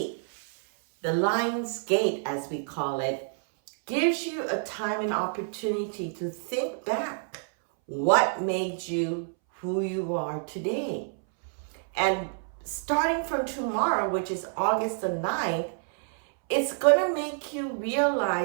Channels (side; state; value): left; silent; 59 dB below the other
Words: the Lion's Gate, as we call it, gives you a time and opportunity to think back what made you who you are today. And starting from tomorrow, which is August the 9th, it's going to make you